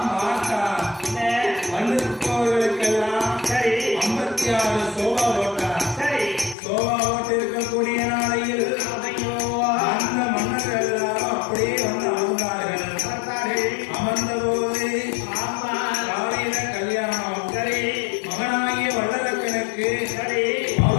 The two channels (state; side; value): drops out; right; at 6.6 s